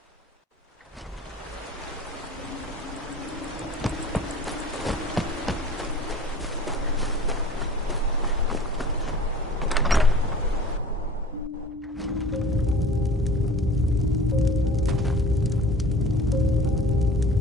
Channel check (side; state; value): both; normal; correlation 0.44